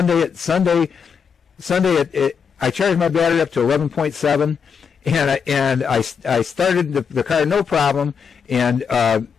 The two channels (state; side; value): quieter; right; 6.5 dB